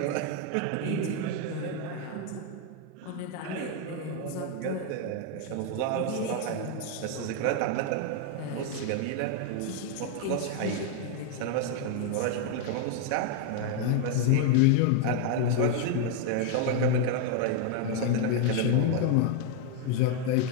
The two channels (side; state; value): both; different; correlation 0.01